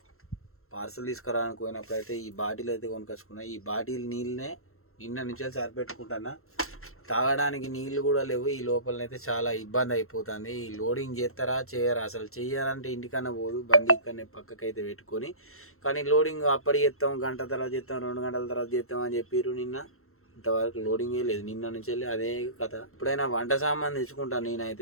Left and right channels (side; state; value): right; late; 0.62 ms